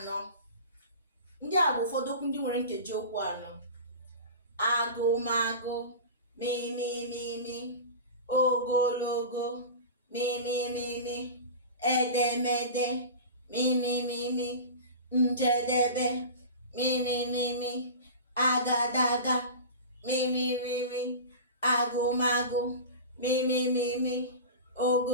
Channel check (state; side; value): inverted; both; correlation -0.32